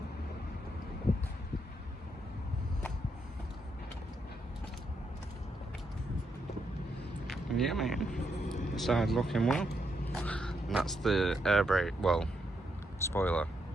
And yeah, man, side looking well. And that's the air brake, well, spoiler,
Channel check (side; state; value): both; normal; correlation 0.79